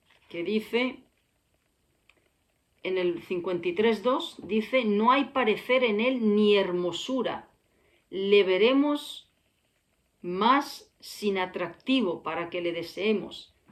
que dice, en el 53:2, dice, no hay parecer en él ni hermosura, le veremos más sin atractivo para que le deseemos.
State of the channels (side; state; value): both; identical; correlation 1.00